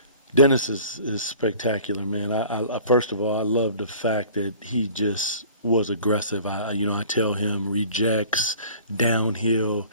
Dennis is spectacular, man. I first of all, I love the fact that he just was aggressive. I tell him rejects, downhill.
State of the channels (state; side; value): inverted; both; correlation -0.47